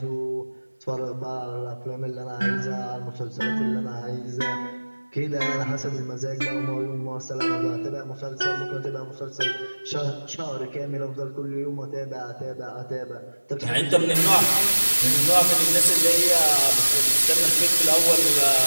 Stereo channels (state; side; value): inverted; both; correlation -1.00